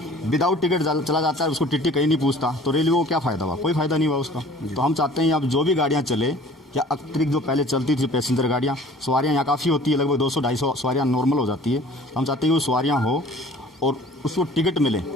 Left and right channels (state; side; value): normal; both; correlation 0.49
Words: विदाउट टिकट चला जाता है, उसको टिकट कहीं नहीं पूछता, तो रेलवे को क्या फ़ायदा हुआ? कोई फ़ायदा नहीं हुआ उसका। तो हम चाहते हैं अब जो भी गाड़ियाँ चले, या अतिरिक्त जो पहले चलती थी पैसेंजर गाड़ियाँ, सवारियाँ यहाँ काफ़ी होती है, लगभग 200-250 सवारियाँ नॉर्मल हो जाती है। हम चाहते हैं कि वो सवारियाँ हो और उसको टिकट मिले,